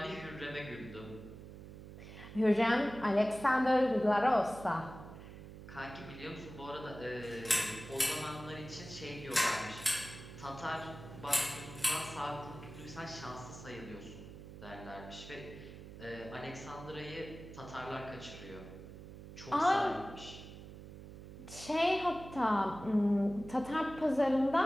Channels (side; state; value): right; noise; hum, 14 dB below the sound